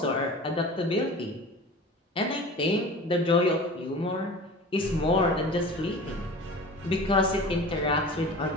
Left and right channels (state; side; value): normal; both; correlation 0.37